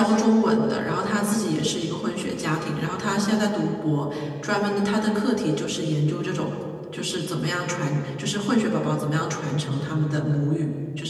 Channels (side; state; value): both; identical; correlation 1.00